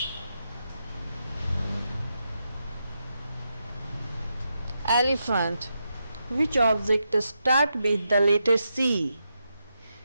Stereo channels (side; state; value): both; inverted; correlation -0.85